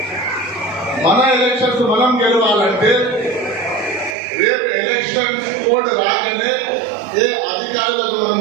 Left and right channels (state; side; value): drops out; left; at 4.2 s